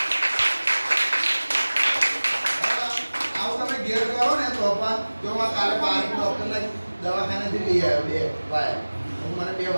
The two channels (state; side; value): inverted; both; correlation -1.00